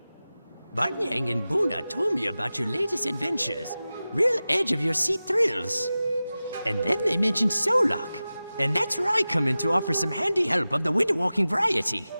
Barnyang and Buna told me about your latest adventures. Real edge-of-your-seat thrills. And then they mentioned Solok. And that's where I come in to offer some handy help of the winter-walking variety.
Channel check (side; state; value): both; inverted; correlation -0.96